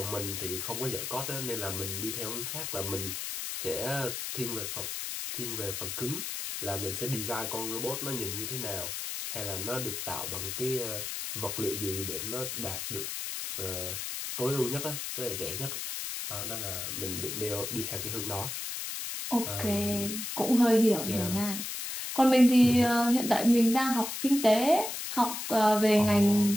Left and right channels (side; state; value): left; noise; hiss, 5 dB below the sound